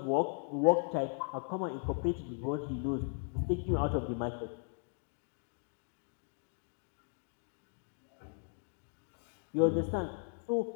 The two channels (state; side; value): silent; right; 53 dB below the other